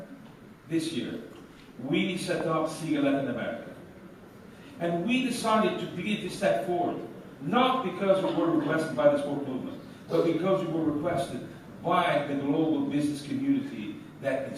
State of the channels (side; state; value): both; identical; correlation 1.00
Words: this year, we set up SIGA Latin America. And we decided to begin to step forward, not because we were requested by the sport movement, but because we were requested by the global business community that